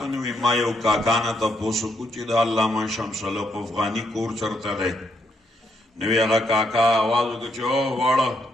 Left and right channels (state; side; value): normal; both; correlation 0.76